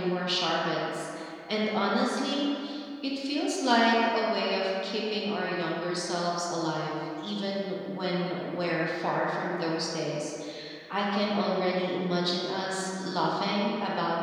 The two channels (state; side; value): identical; both; correlation 1.00